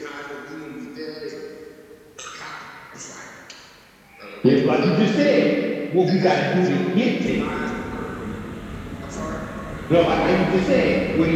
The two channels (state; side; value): identical; both; correlation 1.00